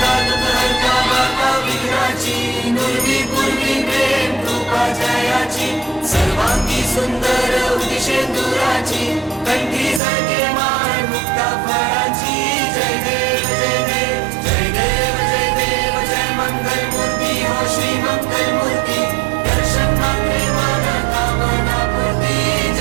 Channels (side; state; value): left; drops out; at 10.0 s